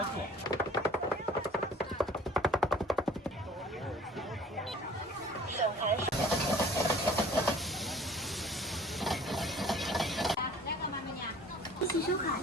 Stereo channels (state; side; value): normal; both; correlation 0.51